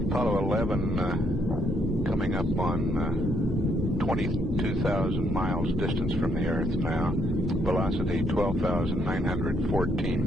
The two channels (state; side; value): normal; both; correlation 0.72